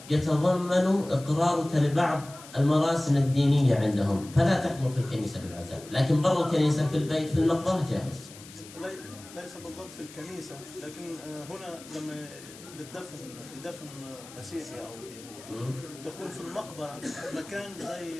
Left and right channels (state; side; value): noise; left; hiss, 18 dB below the sound